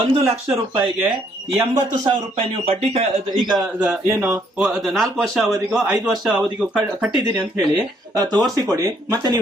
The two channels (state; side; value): normal; both; correlation 0.68